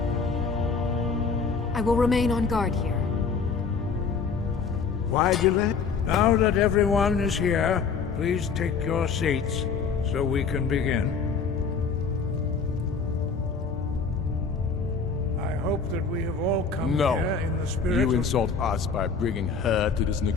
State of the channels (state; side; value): quieter; right; 5.2 dB